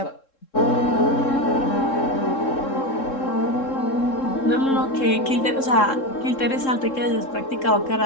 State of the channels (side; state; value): right; late; 3.7 ms